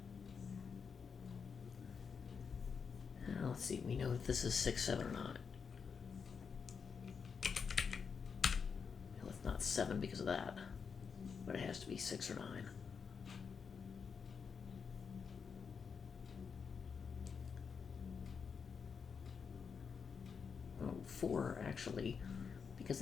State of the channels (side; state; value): right; quieter; 6.0 dB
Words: Now let's see, we know that this is 6, 7, or 9. Well, it's not 7 because of that, but it has to be 6 or 9. Oh, 4 actually, because